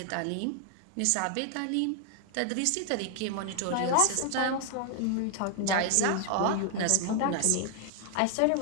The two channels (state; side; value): different; both; correlation 0.00